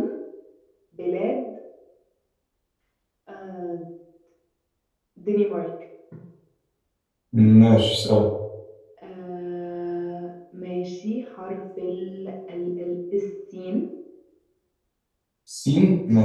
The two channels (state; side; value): identical; both; correlation 1.00